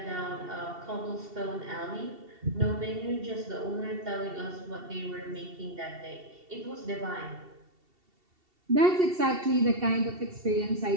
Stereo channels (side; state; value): left; late; 2.7 ms